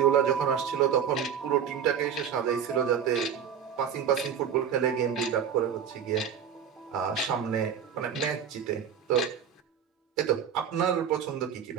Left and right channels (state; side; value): quieter; left; 7.9 dB